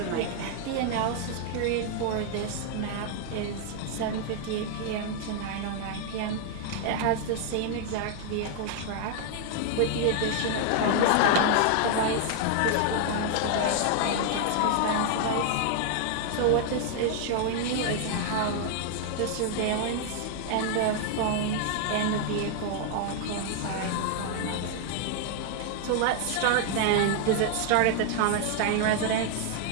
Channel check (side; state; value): both; different; correlation 0.00